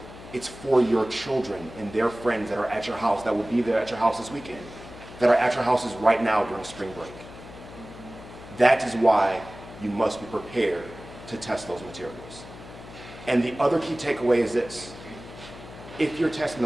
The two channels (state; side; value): noise; left; hum, 16 dB below the sound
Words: It's for your children and their friends that are at your house, that will be there at your house this weekend, that are at your houses right now during spring break. That is why you must be prepared to test those materials. And the other key takeaway is this. If you're testing